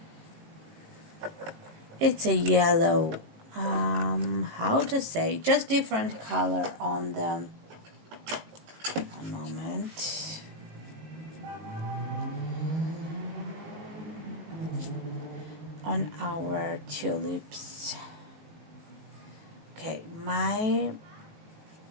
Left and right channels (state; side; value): late; left; 18 ms